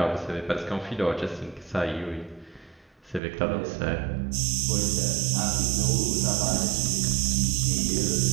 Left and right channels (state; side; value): drops out; left; at 3.2 s